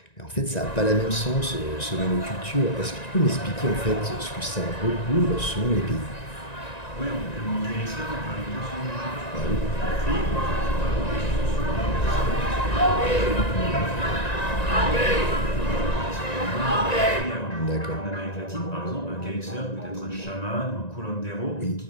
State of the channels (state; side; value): late; right; 1.9 ms